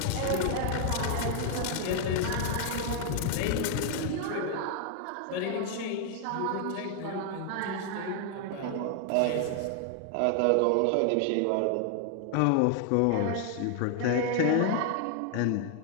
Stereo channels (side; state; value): both; different; correlation 0.00